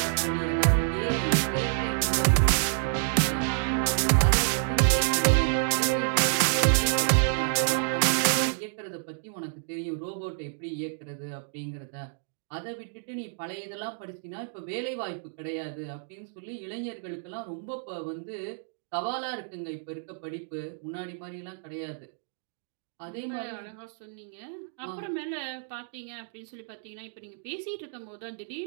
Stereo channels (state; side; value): silent; left; digital silence